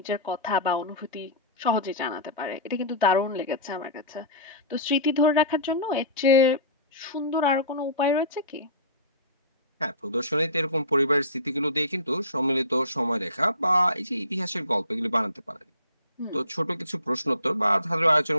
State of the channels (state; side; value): inverted; both; correlation -0.34